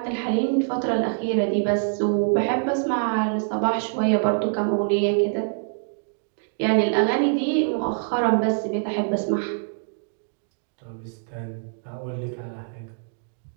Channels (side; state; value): left; silent; digital silence